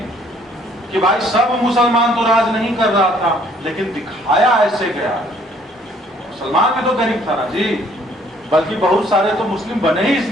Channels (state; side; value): normal; both; correlation 0.61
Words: कि भाई सब मुसलमान तो राज नहीं कर रहा था, लेकिन दिखाया ऐसे गया। मुसलमान भी तो गरीब था ना जी, बल्कि बहुत सारे तो मुस्लिम बने ही